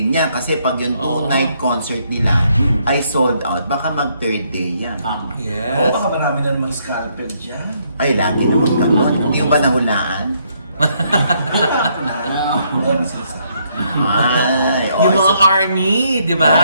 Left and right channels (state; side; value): inverted; both; correlation -0.72